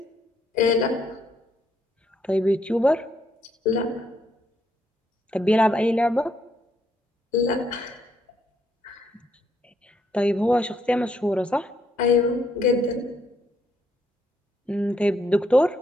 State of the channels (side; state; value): both; normal; correlation 0.74